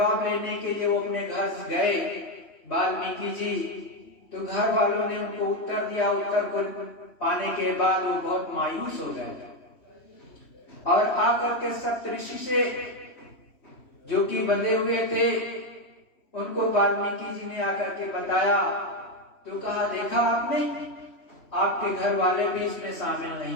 लेने के लिए वो अपने घर गए वाल्मीकि जी, तो घर वालों ने उनको उत्तर दिया। उत्तर को पाने के बाद वो बहुत मायूस हो गए और आकर के सप्तऋषि से जो कि बंधे हुए थे उनको वाल्मीकि जी ने आकर के बताया। तो कहा देखा आपने, आपके घर वाले भी इसमें शामिल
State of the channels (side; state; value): right; late; 3.1 ms